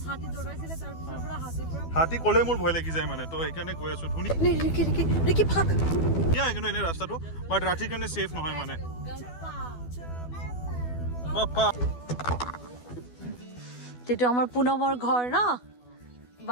হাতী দৌৰাইছিলে তাৰ পিছৰ পৰা হাতী কলে মোৰ ভয় লাগি যায় মানে তো এইকাৰণে গৈ আছো ধুনি ৰিকি ফাক ইয়া কিন্তু এনে ৰাস্তাটো বাট ৰাতিৰ কাৰণে সেফ নহয় মানে তেটো আমাৰ পুনমৰ ঘৰ ন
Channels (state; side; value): late; right; 12 ms